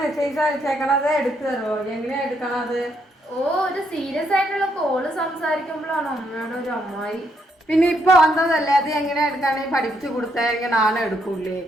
അയച്ചേക്കണത് എടുത്തു തരുമോ? എങ്ങനെയാ എടുക്കണത്? ഓ, ഒരു സീരിയസ് ആയിട്ടുള്ള കോള് സംസാരിക്കുമ്പോഴാണ് അമ്മയുടെ ഒരു അമ്മായി. പിന്നെ ഇപ്പൊ വന്നതല്ലേ, അത് എങ്ങനെയാ എടുക്കാണെങ്കിൽ പഠിപ്പിച്ചു കൊടുത്തെങ്കിൽ നാളെ എടുക്കൂലേ?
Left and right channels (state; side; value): normal; both; correlation 0.75